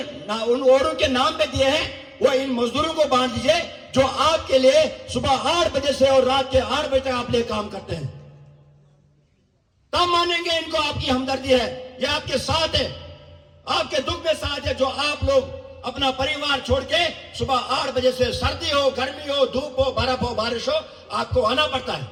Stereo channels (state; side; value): identical; both; correlation 1.00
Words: उन औरों के नाम पे दिए हैं, वो इन मजदूरों को बांट दीजिए जो आपके लिए सुबह 8 बजे से और रात के 8 बजे तक आप लिए काम करते हैं। तब मानेंगे इनको आपकी हमदर्दी है, ये आपके साथ है, आपके दुख में साथ है। जो आप लोग अपना परिवार छोड़ के सुबह 8 बजे से, सर्दी हो, गर्मी हो, धूप हो, बर्फ हो, बारिश हो, आपको आना पड़ता